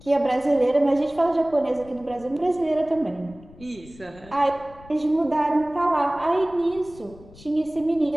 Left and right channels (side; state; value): left; noise; rumble, 22 dB below the sound